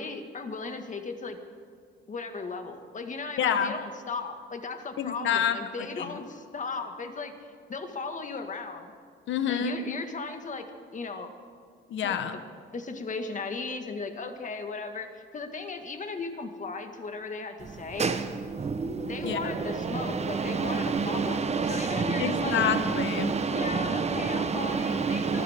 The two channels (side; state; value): both; normal; correlation 0.30